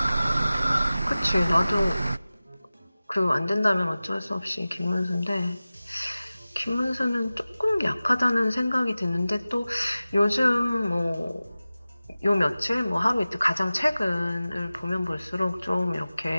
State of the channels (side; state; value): both; inverted; correlation -0.97